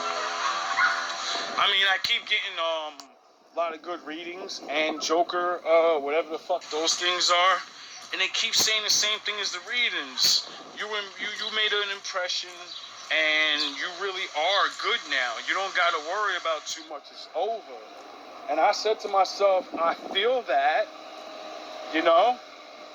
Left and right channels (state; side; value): identical; both; correlation 1.00